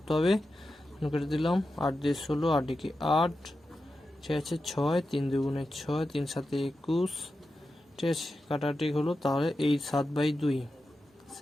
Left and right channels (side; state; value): both; normal; correlation 0.91